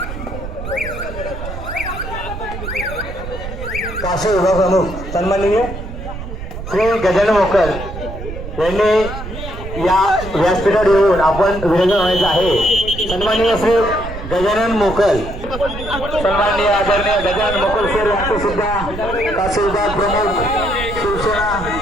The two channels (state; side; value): noise; right; rumble, 9 dB below the sound